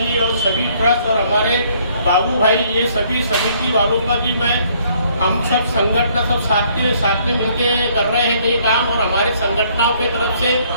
और सभी ट्रस्ट और हमारे बाबू भाई, ये सभी समिति वालों का भी मैं, हम सब संगठन सब साथ में मिलके कर रहे हैं ये काम। और हमारे संगठनों की तरफ से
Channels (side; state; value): both; inverted; correlation -0.64